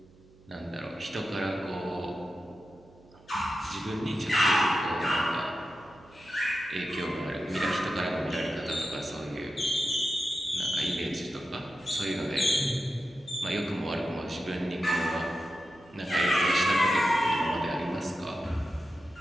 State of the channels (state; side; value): noise; right; hum, 26 dB below the sound